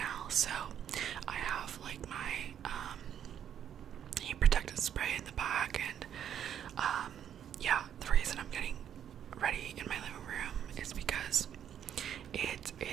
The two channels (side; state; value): left; quieter; 9.4 dB